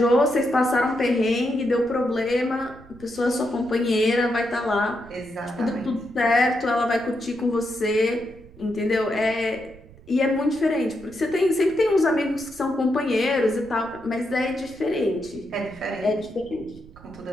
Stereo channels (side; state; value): right; noise; rumble, 21 dB below the sound